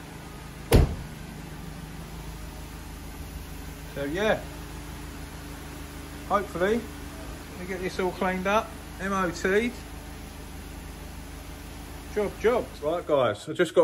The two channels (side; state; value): both; identical; correlation 1.00